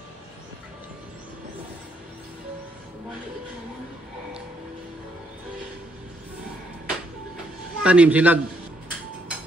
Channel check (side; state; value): both; normal; correlation 0.73